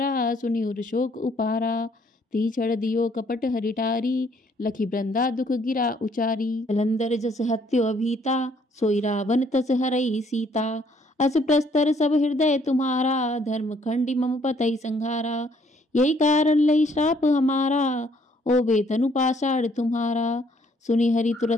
सुनि उर शोक उपारा। ती छड़ दियो कपट हरिटारी, लखी वृंदा दुख गिरा उचारी। जलंधर जस हत्यो अभीता, सोई रावण तस हरई सीता। अस प्रस्तर सब हृदय तुम्हारा, धर्म खंडी मम पतई संहारा। यही कारण लई श्राप हमारा, ओबे तनु पाषाण तुम्हारा। सुनि हरि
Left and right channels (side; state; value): both; normal; correlation 0.65